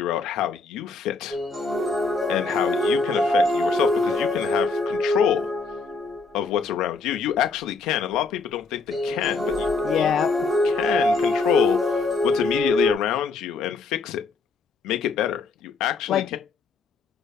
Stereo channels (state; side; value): quieter; right; 4.2 dB